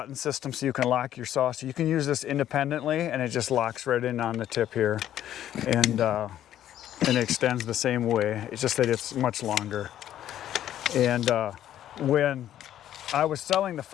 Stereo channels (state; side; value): quieter; right; 11.6 dB